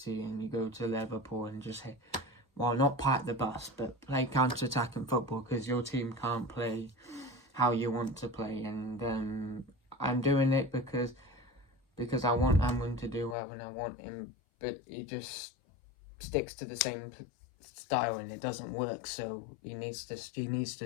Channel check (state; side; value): drops out; right; at 13.4 s